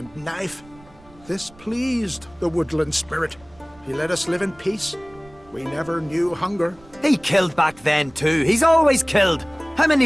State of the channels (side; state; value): right; noise; rumble, 26 dB below the sound